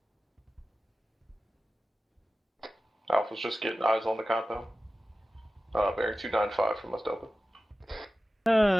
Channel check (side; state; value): both; normal; correlation 0.95